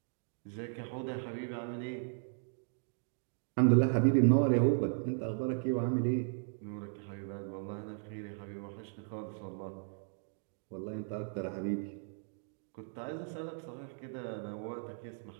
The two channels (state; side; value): silent; left; digital silence